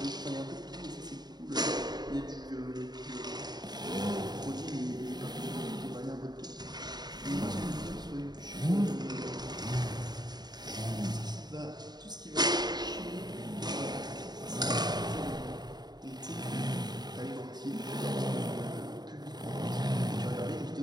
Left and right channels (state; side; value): late; left; 0.20 ms